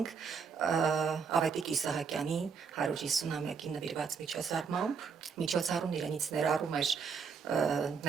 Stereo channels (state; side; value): quieter; left; 5.8 dB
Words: Ավետիք Իսահակյանի 150-ամյակին նվիրված միջոցառմամբ։ Միջոցառումն իրենից ներառում էր